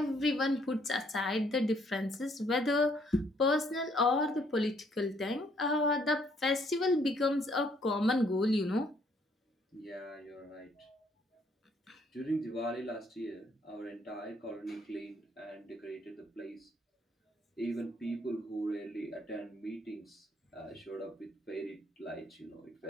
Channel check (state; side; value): normal; both; correlation 0.67